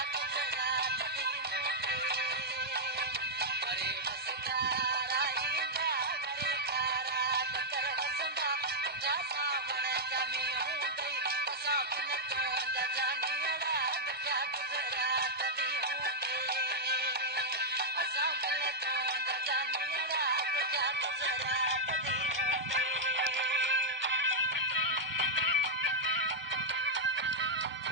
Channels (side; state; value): both; normal; correlation -0.05